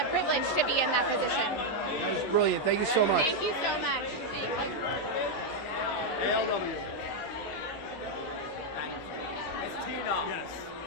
privilege to be in that position. That was brilliant. Thank you so much. Thank you so much. Thank you. ALW. Yes.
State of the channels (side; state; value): right; late; 12 ms